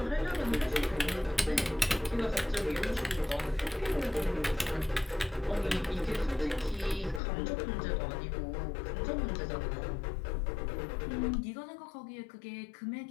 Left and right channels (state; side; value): drops out; right; at 7.2 s